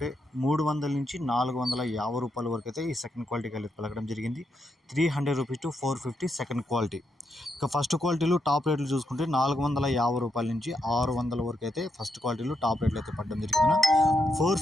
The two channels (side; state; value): both; normal; correlation 0.82